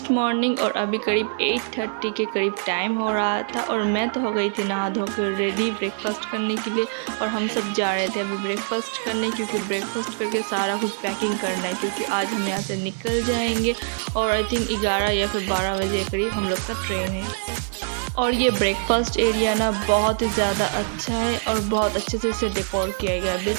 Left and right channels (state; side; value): silent; left; 63 dB below the other